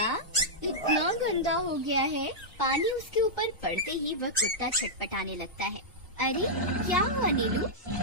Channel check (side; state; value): both; normal; correlation -0.09